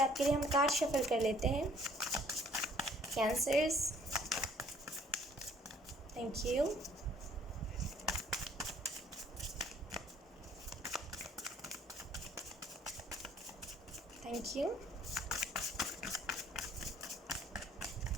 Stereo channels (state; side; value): normal; both; correlation 0.59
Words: आपके लिए हम कार्ड शफल कर लेते हैं cancers. Thank you. Thank you.